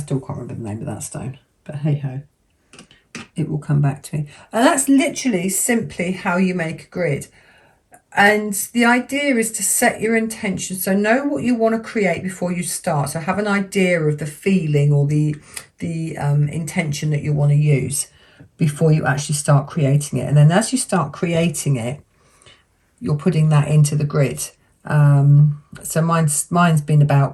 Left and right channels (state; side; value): identical; both; correlation 1.00